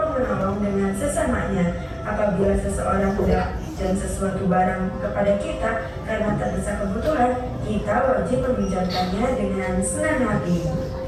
dengan sesamanya. Apabila seseorang hendak pinjam sesuatu barang kepada kita karena terdesak kebutuhan, kita wajib meminjamkannya dengan senang hati.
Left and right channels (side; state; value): both; identical; correlation 1.00